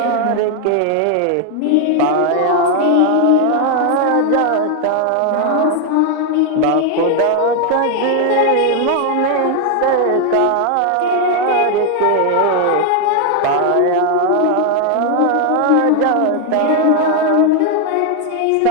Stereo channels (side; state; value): both; different; correlation 0.01